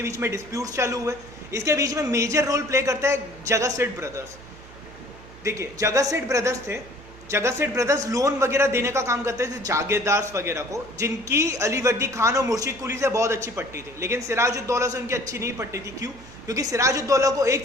बीच में डिस्प्यूट्स चालू हुए. इसके बीच में मेजर रोल प्ले करता है जगत सेठ ब्रदर्स. देखिए, जगत सेठ ब्रदर्स थे. जगत सेठ ब्रदर्स लोन वगैरह देने का काम करते थे जागीरदार्स वगैरह को, जिनकी अली वर्दी खान और मुर्शिद कुली से बहुत अच्छी पट्टी थी. लेकिन सिराजुद्दौला से उनकी अच्छी नहीं पट्टी थी. क्यों? क्योंकि सिराजुद्दौला को एक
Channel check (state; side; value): noise; right; hum, 20 dB below the sound